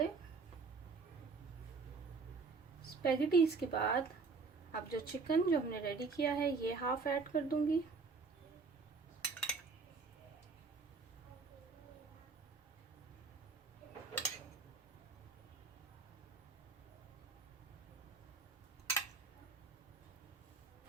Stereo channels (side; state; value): left; quieter; 4.5 dB